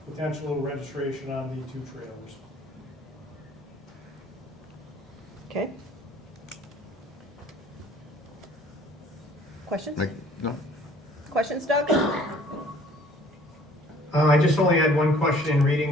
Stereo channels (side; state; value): both; normal; correlation 0.55